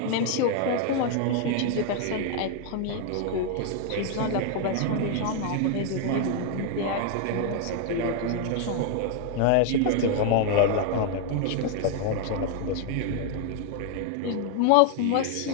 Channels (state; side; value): different; both; correlation 0.00